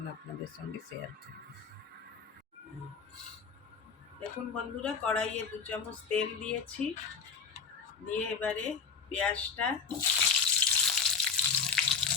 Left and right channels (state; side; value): quieter; right; 5.8 dB